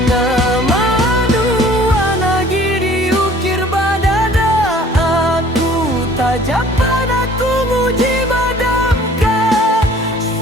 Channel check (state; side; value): normal; both; correlation 0.52